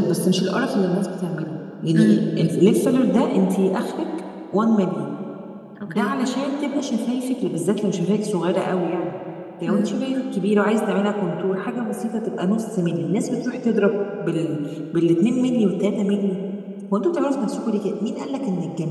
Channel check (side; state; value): both; identical; correlation 1.00